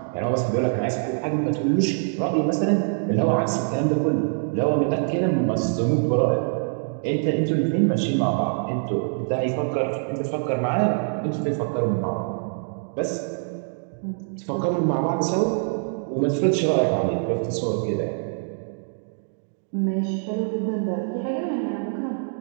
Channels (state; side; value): silent; left; 62 dB below the other